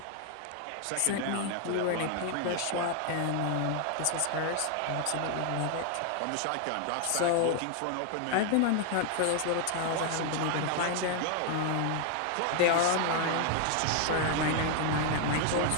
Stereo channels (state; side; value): different; both; correlation 0.00